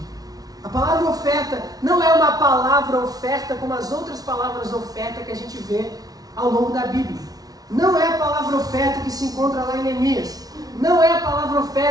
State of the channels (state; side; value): late; left; 0.18 ms